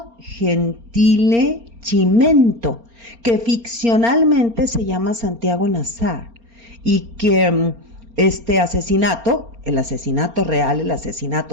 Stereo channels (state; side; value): late; left; 4.3 ms